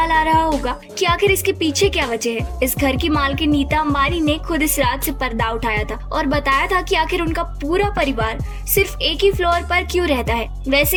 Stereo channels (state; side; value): identical; both; correlation 1.00